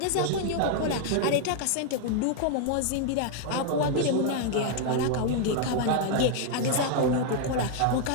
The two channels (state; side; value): different; both; correlation 0.00